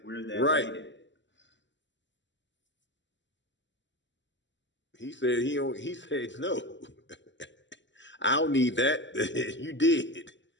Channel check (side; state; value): right; late; 0.53 ms